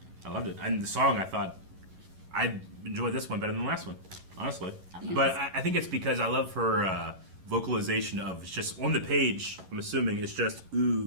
I loved it. And the song, I thought, I enjoyed this one better than the last one, honestly. But I think it's because I love her vocalization of, it's just on the page, I'm assuming it's just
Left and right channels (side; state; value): left; late; 11 ms